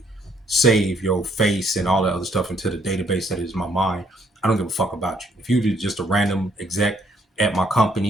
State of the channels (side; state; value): both; normal; correlation 0.68